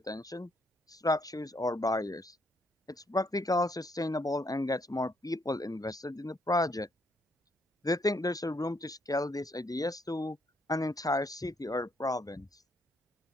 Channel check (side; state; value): both; normal; correlation 0.71